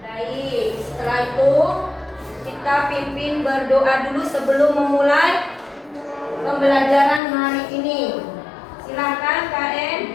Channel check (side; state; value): right; drops out; at 7.2 s